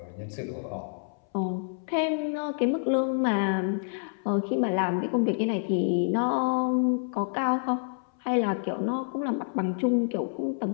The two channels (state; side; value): silent; right; 59 dB below the other